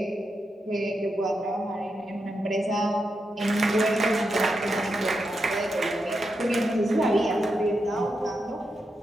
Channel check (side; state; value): both; normal; correlation 0.85